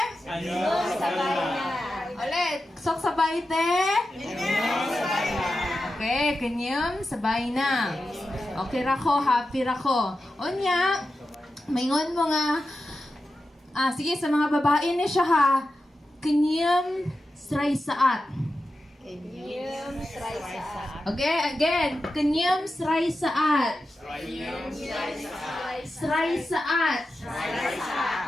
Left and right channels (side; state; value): both; normal; correlation 0.91